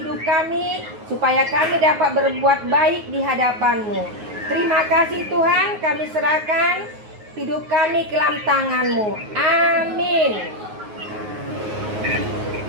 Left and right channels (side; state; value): left; late; 9.5 ms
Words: kami, supaya kami dapat berbuat baik di hadapan-Mu. Terima kasih Tuhan, kami serahkan hidup kami ke dalam tangan-Mu. Amin.